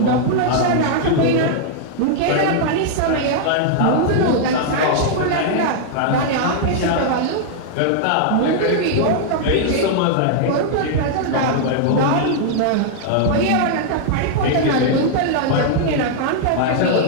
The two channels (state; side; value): different; both; correlation -0.01